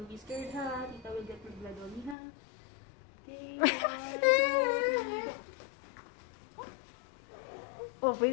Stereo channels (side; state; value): right; drops out; at 2.1 s